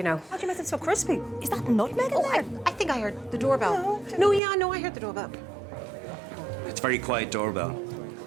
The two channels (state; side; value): drops out; left; at 4.4 s